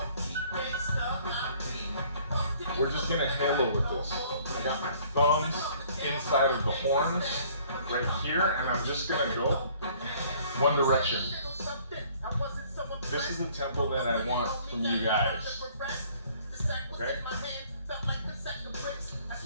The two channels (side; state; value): both; inverted; correlation -0.57